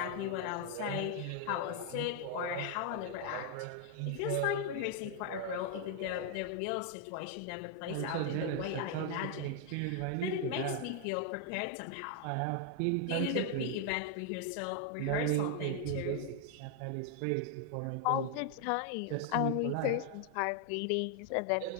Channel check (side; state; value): both; different; correlation 0.00